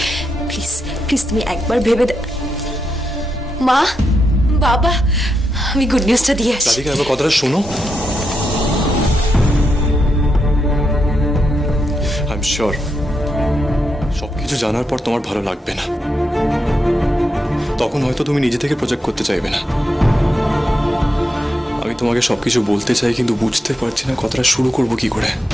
প্লিজ প্লিজ তুমি একবার ভেবে মা, বাবা, আমি গুড নিউজটা দিয়ে আসি। রাধিকা, এবার কথাটা শোনো। আই এম শিওর সবকিছু জানার পর তোমার ভালো লাগবে না, তখন হয়তো তুমি নিজে থেকে প্রজেক্ট করতে চাইবে না। আমি তোমাকে সবকিছু বলতে চাই, কিন্তু বুঝতে পারছি না কথাটা শুরু করব কি করে।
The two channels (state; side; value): normal; both; correlation 0.84